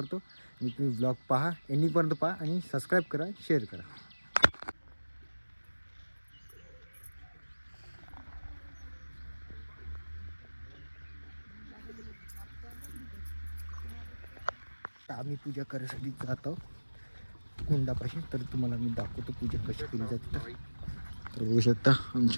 आणि तुम्ही व्लॉग पहा, एंडिंगपर्यंत पहा आणि सबस्क्राईब करा, शेअर करा. आम्ही पूजा करायसाठी जातो कुंडापाशी. तर तुम्हाला मी दाखवतो पूजा कशी केली जाते. तर बघू शकता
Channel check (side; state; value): both; inverted; correlation -1.00